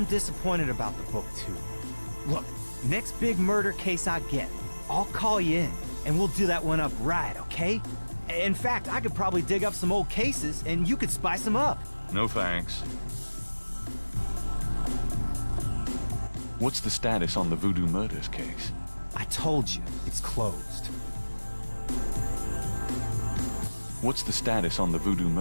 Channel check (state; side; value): inverted; both; correlation -1.00